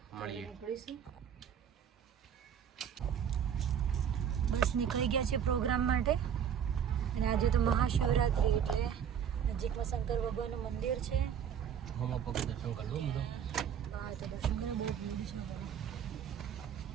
મળીએ. બસ નીકળી ગયા છે પ્રોગ્રામ માટે. અને આજે તો મહાશિવરાત્રી એટલે નજીકમાં શંકર ભગવાનનું મંદિર છે. હમણાં પગ દર્શન કરવું બધો. હા, તો દર્શન કરો, બહુ ભીડ છે.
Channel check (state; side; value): quieter; left; 8.4 dB